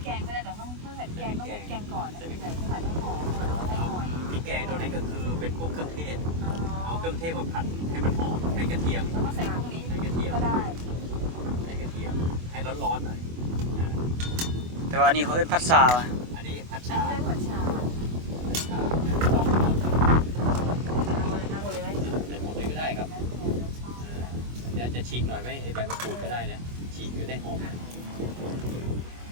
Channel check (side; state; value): left; late; 24 ms